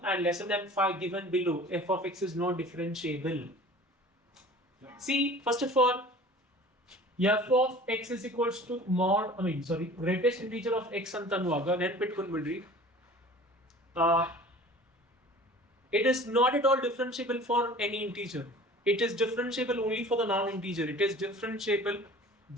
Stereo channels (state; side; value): normal; both; correlation 0.44